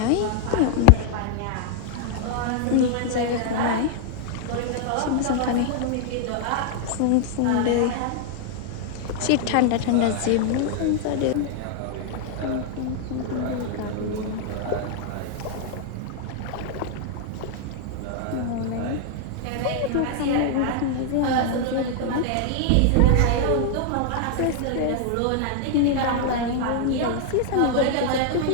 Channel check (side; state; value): both; different; correlation 0.00